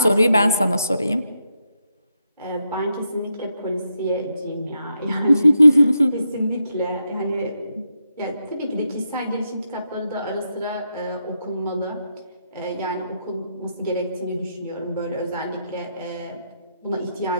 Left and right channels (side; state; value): both; inverted; correlation -0.83